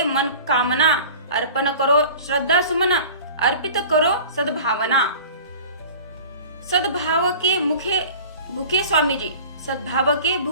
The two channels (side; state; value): both; inverted; correlation -0.41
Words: मन कामना, अर्पण करो श्रद्धा सुमन, अर्पित करो सद्भावना। सद्भाव के भूखे स्वामी जी, सद्भाव के